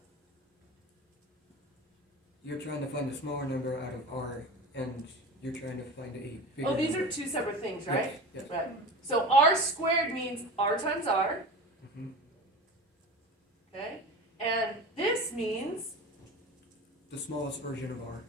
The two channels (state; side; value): normal; both; correlation 0.32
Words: You're trying to find a smaller number out of r, and you're trying to find a bigger. Oh, these number. are two separate things, right? Yes. Yes. Right. So r squared means r times r, hmm okay? And this means The smallest version of r.